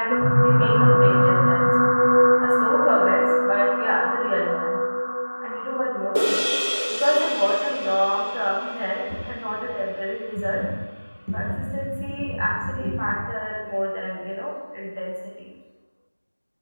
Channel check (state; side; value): inverted; both; correlation -1.00